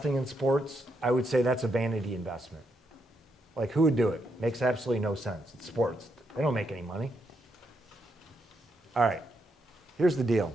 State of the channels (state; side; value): normal; both; correlation 0.80